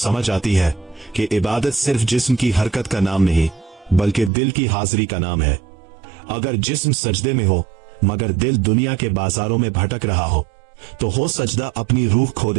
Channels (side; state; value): left; drops out; at 4.3 s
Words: आती है कि इबादत सिर्फ जिस्म की हरकत का नाम नहीं, बल्कि दिल की हाजिरी का नाम है। अगर जिस्म सजदे में हो मगर दिल दुनिया के बाजारों में भटक रहा हो सजदा अपनी रूह खो